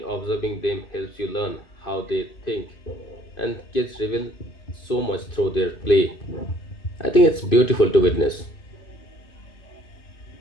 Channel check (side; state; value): right; late; 2.5 ms